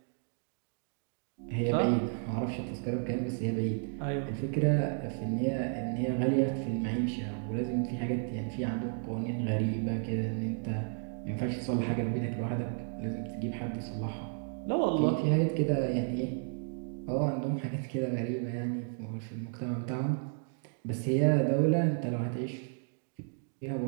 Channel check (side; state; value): left; silent; 56 dB below the other